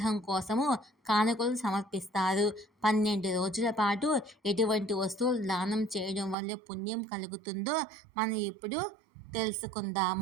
కోసము కానుకలు సమర్పిస్తారు. 12 రోజుల పాటు ఎటువంటి వస్తువులు దానం చేయడం వల్ల పుణ్యం కలుగుతుందో మనం ఇప్పుడు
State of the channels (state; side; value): drops out; left; at 6.4 s